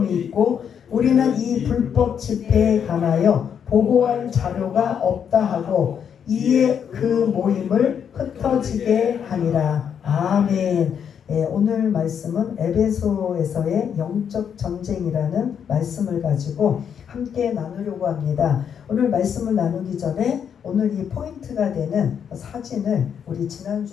있고 우리는 이 불법 집회에 관하여 보고할 자료가 없다 하고 이에 그 모임을 흩어지게 하니라. 아멘. 오늘 말씀은 에베소에서의 영적 전쟁이라는 말씀을 가지고 함께 나누려고 합니다. 오늘 말씀을 나누기 전에 오늘 이 포인트가 되는 사진을 우리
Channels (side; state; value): right; quieter; 7.9 dB